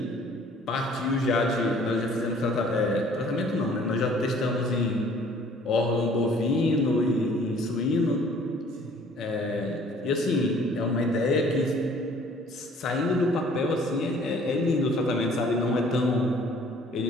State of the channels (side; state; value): both; normal; correlation 0.55